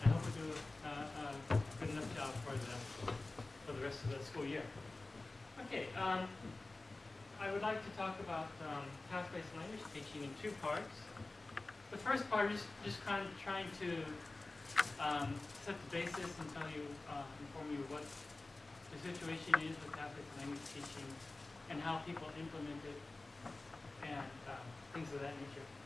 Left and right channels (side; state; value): right; quieter; 3.1 dB